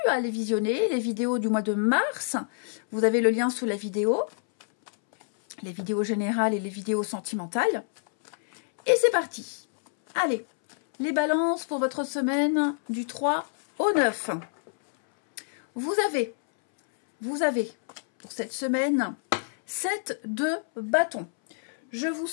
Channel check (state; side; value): silent; right; 60 dB below the other